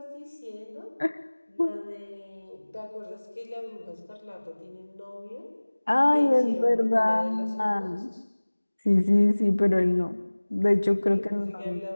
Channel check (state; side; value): inverted; both; correlation -1.00